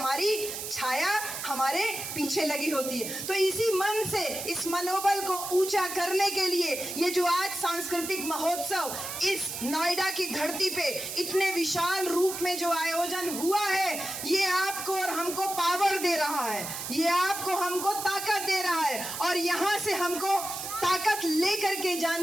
छाया हमारे पीछे लगी होती है। तो इसी मन से, इस मनोबल को ऊंचा करने के लिए ये जो आज सांस्कृतिक महोत्सव इस नोएडा की धरती पे इतने विशाल रूप में जो आयोजन हुआ है, ये आपको और हमको पावर दे रहा है, ये आपको हमको ताकत दे रहा है और यहाँ से हमको ताकत लेकर के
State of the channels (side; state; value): right; noise; hiss, 6 dB below the sound